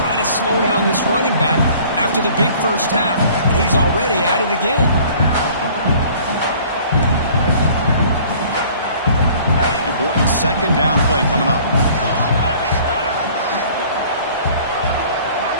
try to slow down this running back after the big first half, and he's already at it again. Important second down play coming up.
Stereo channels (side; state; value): both; inverted; correlation -0.52